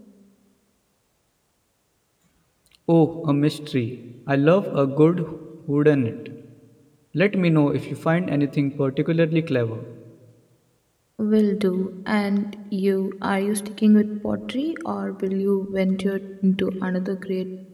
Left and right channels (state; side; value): identical; both; correlation 1.00